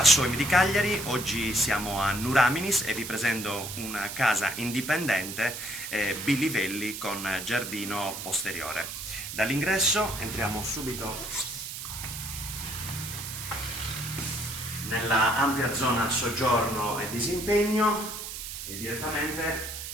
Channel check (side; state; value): right; noise; hiss, 8 dB below the sound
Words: Soim di Cagliari. Oggi siamo a Nuraminis e vi presento una casa indipendente bilivelli con giardino posteriore. Dall'ingresso entriamo subito nella ampia zona soggiorno e disimpegno e direttamente